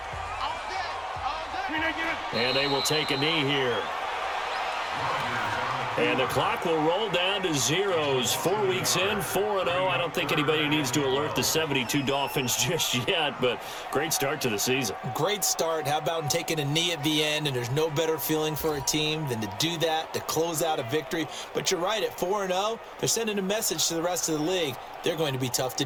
And they will take a knee here. And the clock will roll down to zeros. 4 weeks in, 4-0. I don't think anybody needs to alert the 72 Dolphins just yet, but great start to the season. Great start. How about taking a knee at the end? And there's no better feeling for a team than to do that, to close out a victory. But you're right, at 4-0, they're sending a message to the rest of the league. They're going to be tough to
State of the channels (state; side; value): identical; both; correlation 1.00